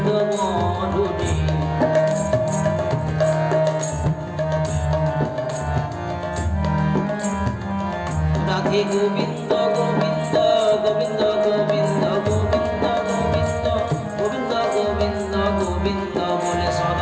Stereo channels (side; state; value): both; identical; correlation 1.00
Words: বলুরে রাধে গোবিন্দ গোবিন্দ গোবিন্দ গোবিন্দ গোবিন্দ গোবিন্দ গোবিন্দ গোবিন্দ গোবিন্দ বলে